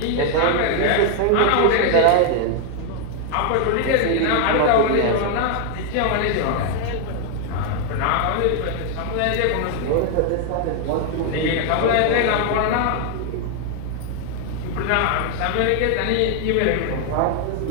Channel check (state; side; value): different; both; correlation 0.00